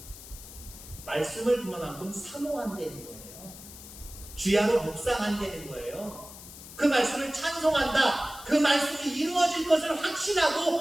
말씀을 그만큼 사모한다는 거예요. 주야로 묵상한다는 거예요. 그 말씀을 찬송한다. 그 말씀이 이루어질 것을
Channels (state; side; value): noise; left; hiss, 15 dB below the sound